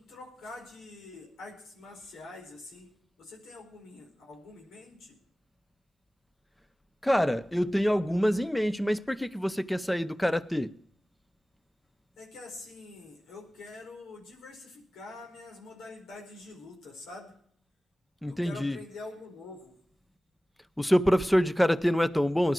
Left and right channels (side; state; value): both; normal; correlation 0.98